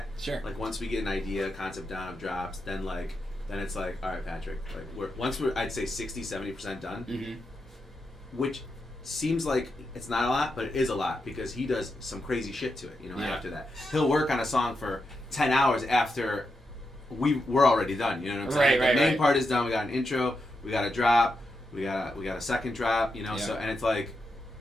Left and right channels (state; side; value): normal; both; correlation 0.86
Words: sure. Like once we get an idea, concept down of drops, then it's like, all right, Patrick, like we're I'd say 60-70% done, Mm-hmm. which seems like it's not a lot, but it is a lot because he does some crazy shit to it. Yeah. After that, he'll work on a song for 10 hours after we're already done. You know what I'm saying? Right, The main right. part is done. We got an intro. We got a drop. We got a second drop. Yeah. So and it's like